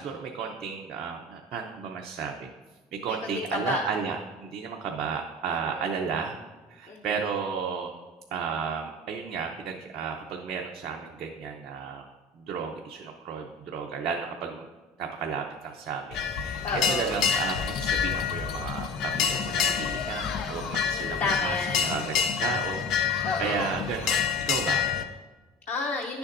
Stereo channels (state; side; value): normal; both; correlation 0.34